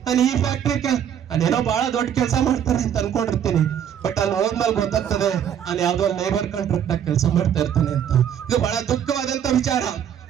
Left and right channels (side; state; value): left; quieter; 9.1 dB